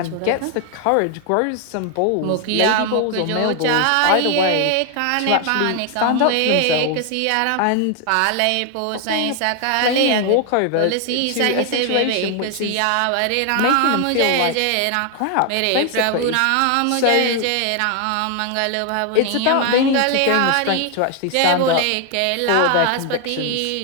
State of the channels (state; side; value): different; both; correlation 0.00